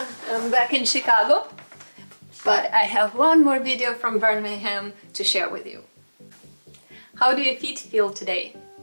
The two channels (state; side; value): inverted; both; correlation -1.00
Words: I'm back in Chicago, but I have one more video from Birmingham to share with you. How do your feet feel today?